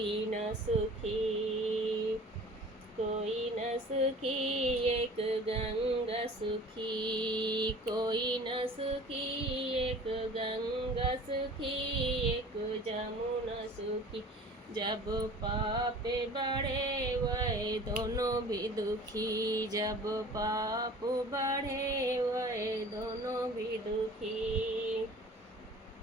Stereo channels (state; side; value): normal; both; correlation 0.44